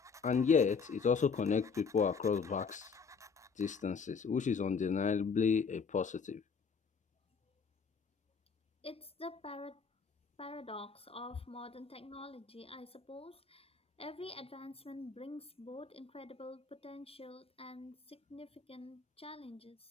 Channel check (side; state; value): right; quieter; 5.6 dB